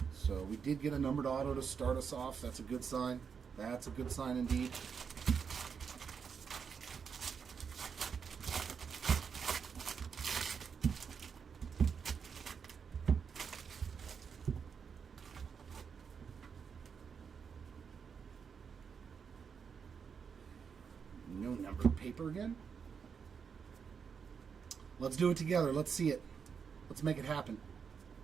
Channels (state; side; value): quieter; left; 6.4 dB